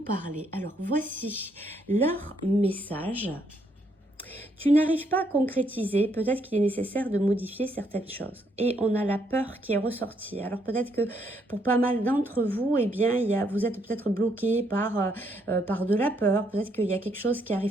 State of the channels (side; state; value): both; normal; correlation 0.73